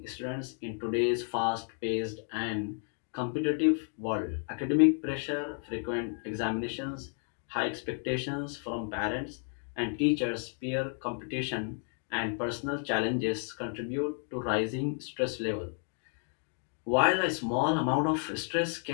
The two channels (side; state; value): right; silent; 55 dB below the other